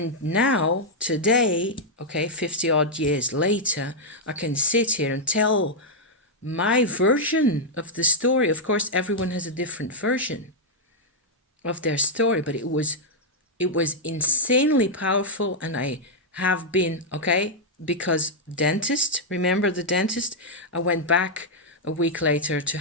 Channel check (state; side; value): normal; both; correlation -0.04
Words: now, today, 50 odd years later, I can sit here and tell my version of the story. Of course, everyone has a different version of their story, but it was insanely powerful. And I have been, because dentist, remember the dentist? I went back a week later to